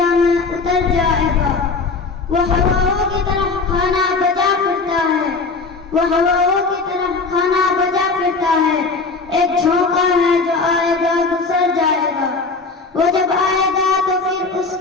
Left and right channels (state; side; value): quieter; right; 4.1 dB